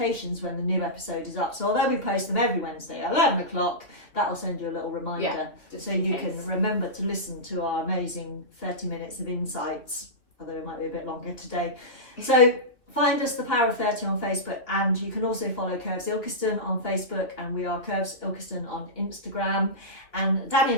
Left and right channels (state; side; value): late; right; 2.7 ms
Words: when the new episode is up. So although we post them every Wednesday at 11 o'clock, that will send you a little reminder. Yeah, just so in you case. can remember to listen to our amazing 30 minutes of insights, although it might be a bit longer today. So find us, the Power of 30 on Facebook, and you can also follow Curves Ilkeston on Facebook, and we are Curves Ilkeston on Instagram. And Danny